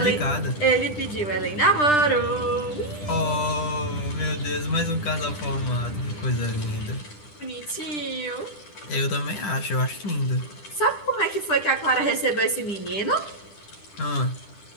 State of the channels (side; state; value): right; late; 10 ms